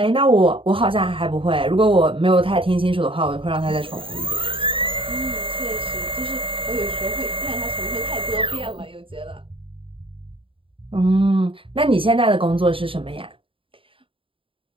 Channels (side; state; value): left; late; 0.26 ms